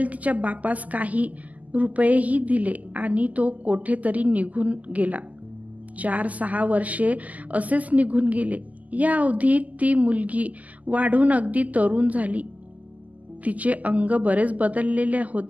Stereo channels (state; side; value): late; left; 0.076 ms